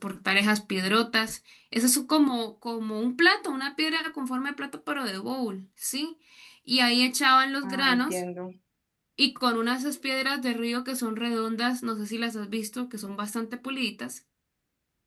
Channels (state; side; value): identical; both; correlation 1.00